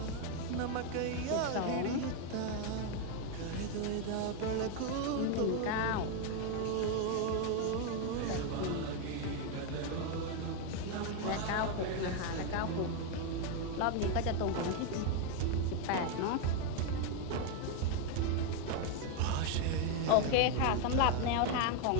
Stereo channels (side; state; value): both; different; correlation 0.01